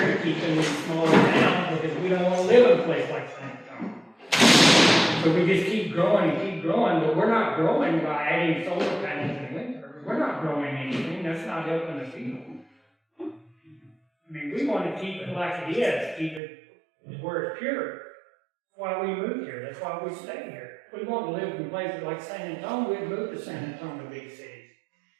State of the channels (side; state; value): left; drops out; at 16.4 s